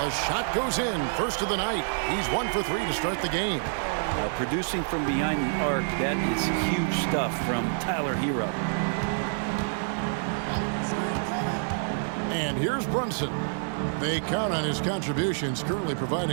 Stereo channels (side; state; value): left; silent; 60 dB below the other